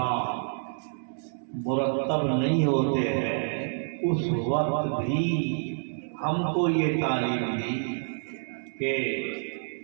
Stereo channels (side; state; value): left; silent; digital silence